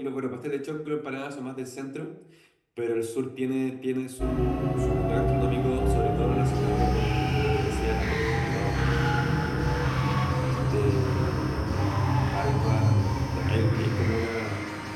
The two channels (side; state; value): both; identical; correlation 1.00